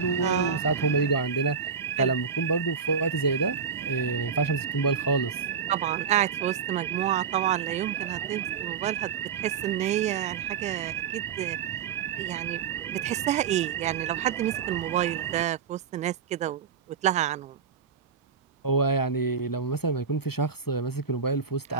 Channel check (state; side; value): quieter; left; 6.4 dB